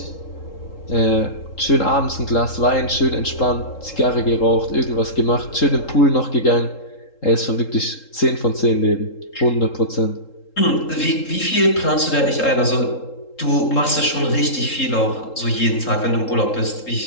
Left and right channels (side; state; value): right; late; 3.7 ms